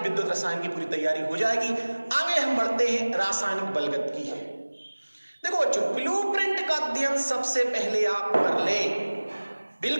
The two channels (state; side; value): inverted; both; correlation -1.00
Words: विद्युत रसायन की पूरी तैयारी हो जाएगी। आगे हम बढ़ते हैं रासायनिक बलगत की। देखो बच्चों, ब्लूप्रिंट का अध्ययन सबसे पहले आप कर ले,